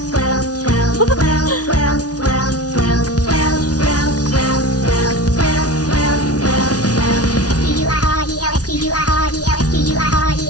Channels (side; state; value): right; late; 0.68 ms